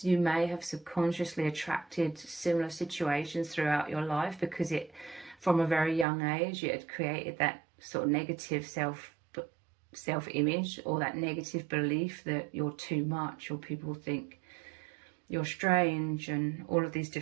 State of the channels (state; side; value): drops out; left; at 6.1 s